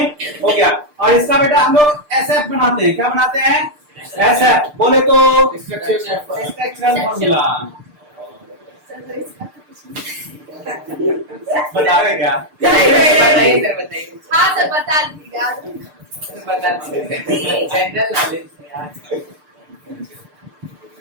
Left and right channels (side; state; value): left; late; 6.7 ms